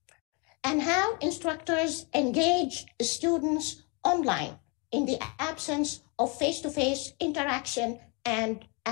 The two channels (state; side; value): quieter; right; 31.6 dB